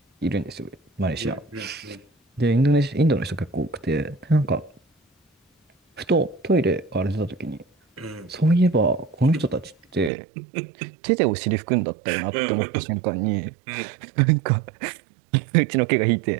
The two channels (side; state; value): left; drops out; at 10.1 s